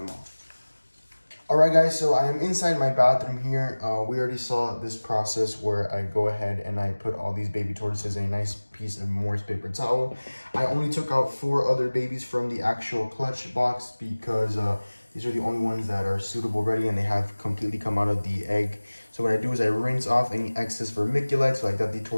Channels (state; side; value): inverted; both; correlation -1.00